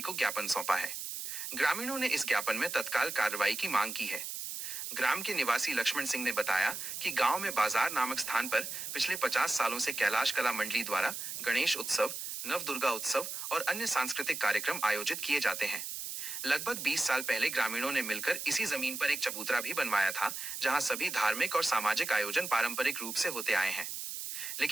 को ज्ञापन सौंपा है। ग्रामीणों ने इस ज्ञापन में तत्काल कार्रवाई की मांग की है। ग्राम के निवासी लक्ष्मण सिंह ने बताया कि गांव में बाजार नामक स्थान पर पिछले 50 सालों से कैलाश कला मंडली द्वारा गणेश उत्सव, नवदुर्गा उत्सव और अन्य सांस्कृतिक कार्यक्रम आयोजित किए जाते हैं। लगभग 20 साल पहले ग्रामीणों ने मिलकर इसी जमीन पर एक चबूतरा भी बनवाया था, जहां सभी धार्मिक और सामाजिक आयोजन पारंपरिक रूप से होते आए हैं।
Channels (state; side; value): noise; right; hiss, 6 dB below the sound